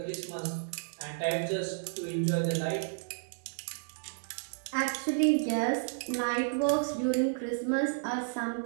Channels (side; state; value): left; silent; 56 dB below the other